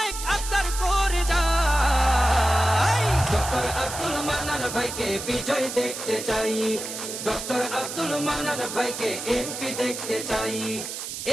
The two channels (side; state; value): right; noise; hiss, 7 dB below the sound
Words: আবদার করে যাই, ডক্টর আব্দুল মান্নান ভাইকে বিজয় দেখতে চাই, ডক্টর আব্দুল মান্নান ভাইকে এমপি দেখতে চাই।